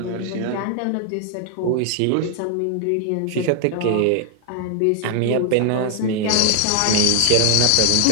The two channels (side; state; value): both; different; correlation 0.00